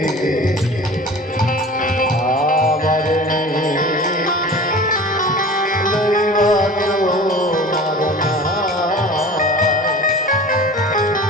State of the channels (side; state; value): both; normal; correlation 0.39